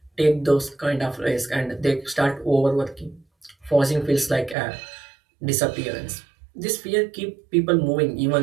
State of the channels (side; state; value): left; drops out; at 4.5 s